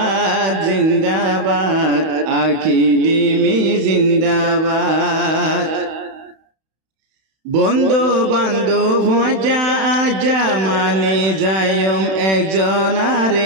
জিন্দাবাদ আকিদিমি জিন্দাবাদ। বন্ধু বান্ধব যা আজা মানে যায়ম একজন আর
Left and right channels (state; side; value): late; left; 31 ms